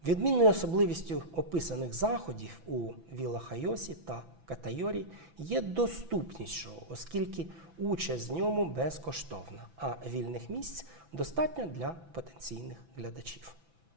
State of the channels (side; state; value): left; late; 6.0 ms